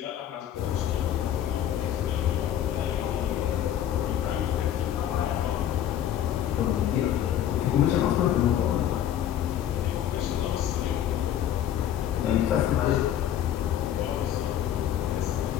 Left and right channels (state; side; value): quieter; right; 10.9 dB